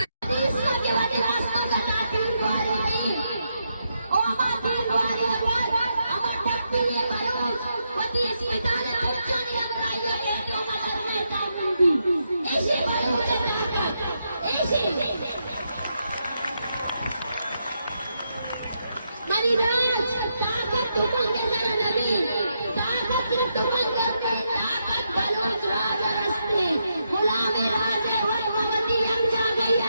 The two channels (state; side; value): inverted; both; correlation -0.82